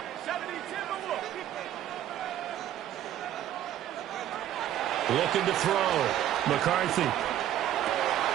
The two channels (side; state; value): left; quieter; 11.7 dB